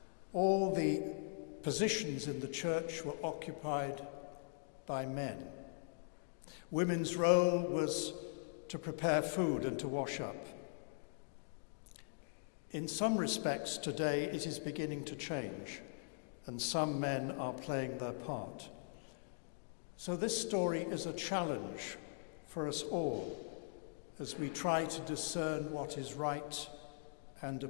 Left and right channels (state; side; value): silent; right; digital silence